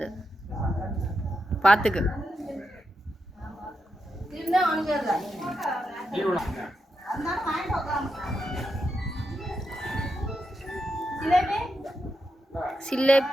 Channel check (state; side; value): normal; both; correlation 0.85